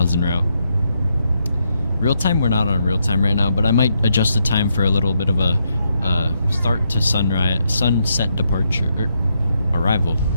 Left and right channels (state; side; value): inverted; both; correlation -0.79